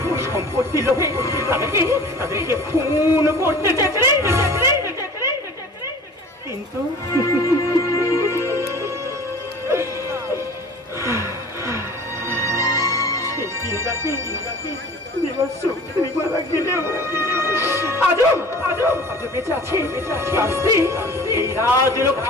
সম্পত্তি লোভে তাদেরকে খুন করতে চেয়েছিলি, কিন্তু সেই দিন রাতে মারা গেলেও আজও বেঁচে আছে এই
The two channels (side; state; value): both; normal; correlation 0.42